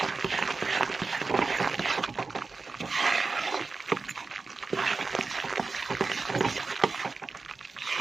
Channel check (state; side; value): quieter; left; 4.1 dB